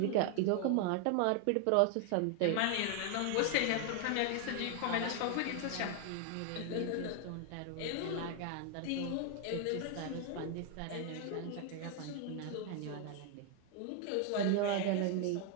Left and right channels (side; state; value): both; different; correlation 0.00